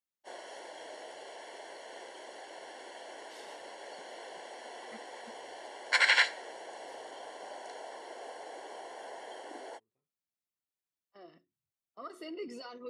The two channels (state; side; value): identical; both; correlation 1.00